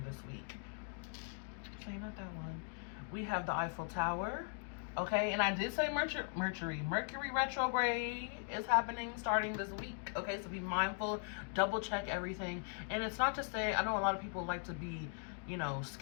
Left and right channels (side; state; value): right; silent; 51 dB below the other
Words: this week. So not that one. We have the Eiffel Tower. Okay, and I did say Mercury retrograde is happening starting this week. Okay, so be mindful, double check everything. And it's not to say, I know a lot of people like to be, you know,